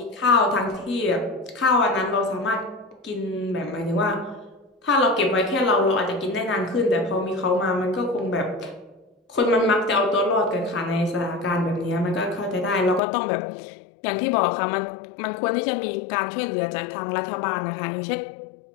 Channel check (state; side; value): drops out; right; at 13.0 s